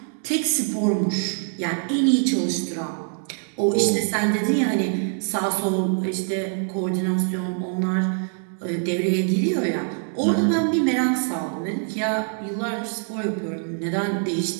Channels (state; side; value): silent; left; 55 dB below the other